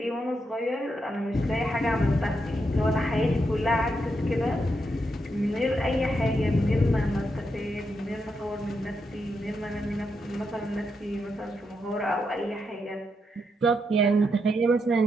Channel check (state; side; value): normal; both; correlation 0.82